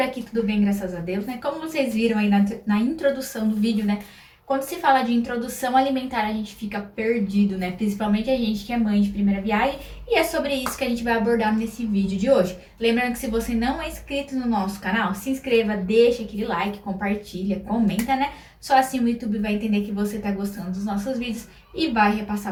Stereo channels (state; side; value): identical; both; correlation 1.00